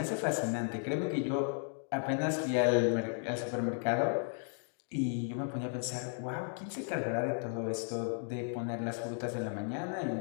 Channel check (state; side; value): silent; right; 55 dB below the other